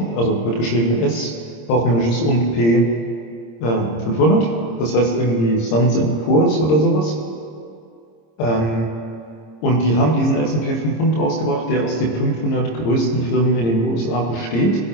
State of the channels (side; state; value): right; late; 26 ms